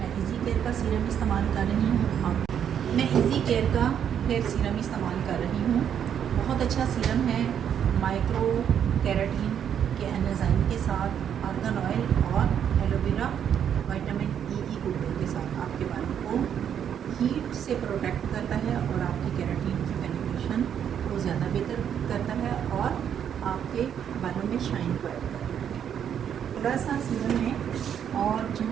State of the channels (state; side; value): quieter; left; 8.8 dB